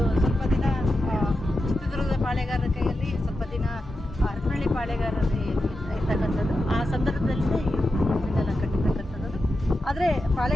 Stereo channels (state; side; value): normal; both; correlation 0.89